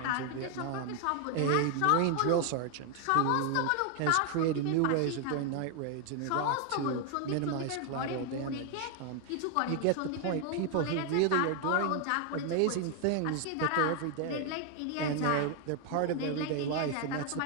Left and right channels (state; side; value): different; both; correlation 0.01